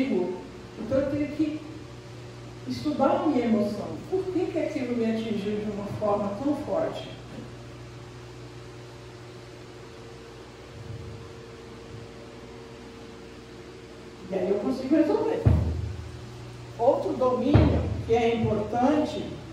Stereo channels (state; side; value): identical; both; correlation 1.00